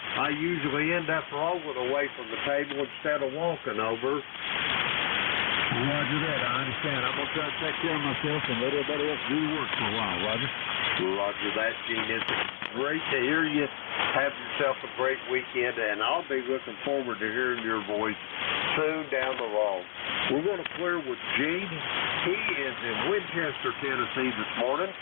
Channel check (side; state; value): right; silent; 57 dB below the other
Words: I usually end up rolling away from the table instead of walking over. Roger that. I understand. I'm going to try to take care of myself and let everybody else do the work for a while, Roger. Roger that, Gene. It's great to hear you. Have yourself a great weekend, and I'll be looking forward to hearing your voice soon down the road. We're going to clear with Gene. He is in Winchester, Tennessee this morning,